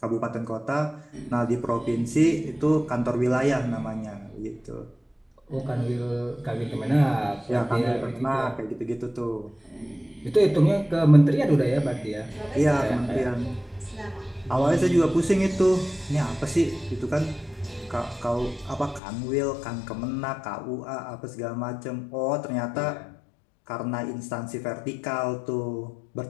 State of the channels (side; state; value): right; drops out; at 19.0 s